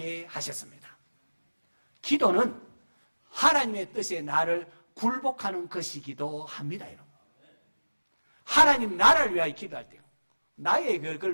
하셨습니다. 기도는 하나님의 뜻에 나를 굴복하는 것이기도 합니다. 여러분. 하나님 나라를 위하여 기도할 때요. 나의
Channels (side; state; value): both; inverted; correlation -1.00